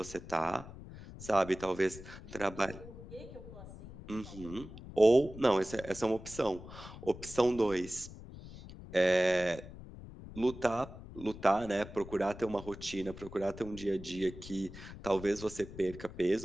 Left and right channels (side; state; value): left; noise; rumble, 14 dB below the sound